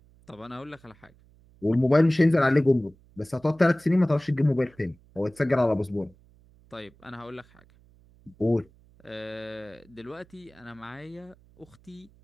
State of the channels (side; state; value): right; noise; hum, 28 dB below the sound